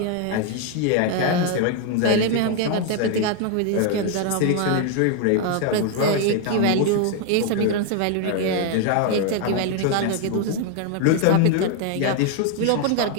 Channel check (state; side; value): different; both; correlation 0.00